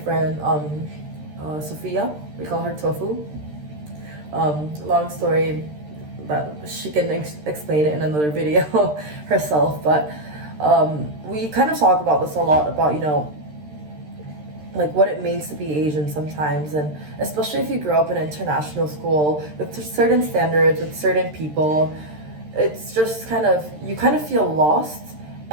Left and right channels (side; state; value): left; late; 13 ms